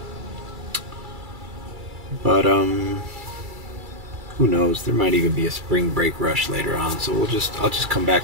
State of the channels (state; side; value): late; left; 2.3 ms